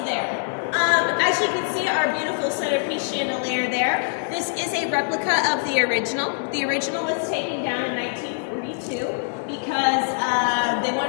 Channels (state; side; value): silent; right; digital silence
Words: there. As you can see, our beautiful centerpiece chandelier there. This is a replica of the original. The original was taken down in 1942 because they